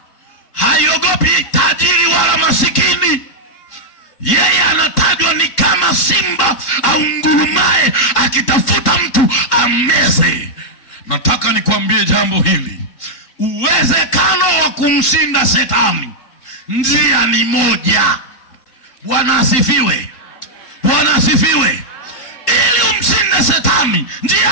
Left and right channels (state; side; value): late; right; 3.9 ms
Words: haiogopi tajiri wala masikini. Yeye anatajwa ni kama simba au ngurumaye akitafuta mtu ameze. Nataka nikwambie jambo hili. Uwezekano wa kumshinda shetani, njia ni moja. Bwana asifiwe. Bwana asifiwe. Ili umshinde shetani,